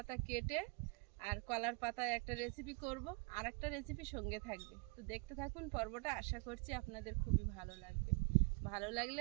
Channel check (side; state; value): left; quieter; 31.5 dB